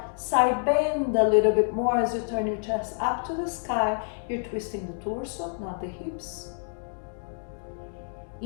side bend a little bit more as you turn your chest up to the sky. You're twisting the torso, not the hips.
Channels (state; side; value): silent; right; digital silence